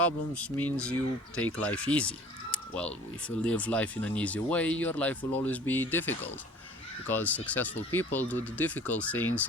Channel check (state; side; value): normal; both; correlation 0.48